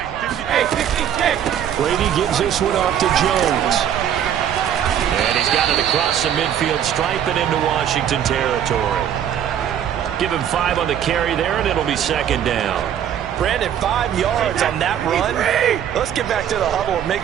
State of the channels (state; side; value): quieter; left; 9.7 dB